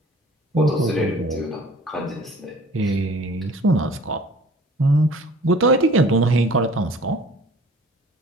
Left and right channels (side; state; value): both; normal; correlation 0.49